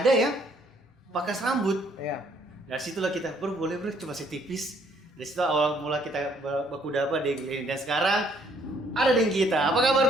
yang pangkas rambut? Iya. Dari situlah kita boleh coba setipis. Dari situ awal mula kita baku dapat di Glenn dan sekarang ada dengan kita. Apa kabar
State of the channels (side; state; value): both; normal; correlation 0.64